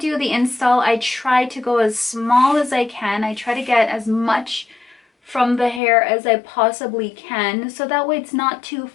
the install, I try to go as small as I can. I try to get as much from the hair as I possibly can, so that way it's not too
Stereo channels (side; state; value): right; drops out; at 5.8 s